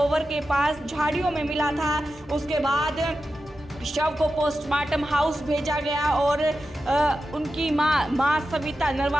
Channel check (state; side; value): normal; both; correlation 0.91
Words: के पास झाड़ियों में मिला था। उसके बाद शव को पोस्टमार्टम हाउस भेजा गया और उनकी मां सविता